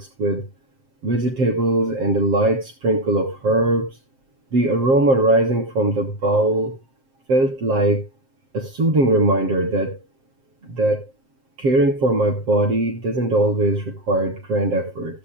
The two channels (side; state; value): left; late; 7.6 ms